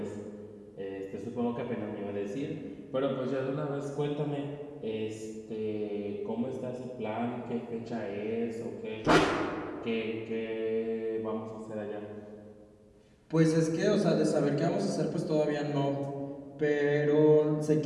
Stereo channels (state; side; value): identical; both; correlation 1.00